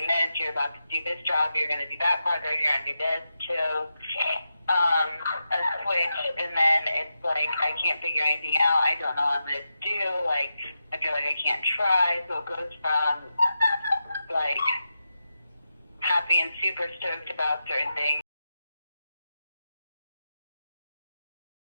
this, you're about to do this job, you're going to do that project, you're going to do this, to a switch, and then it's like, I can't figure anything out, I don't know what I'm going to do, like, I feel like I can't try, so it goes from, like, happy and super stoked about certain things.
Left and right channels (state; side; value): inverted; both; correlation -0.89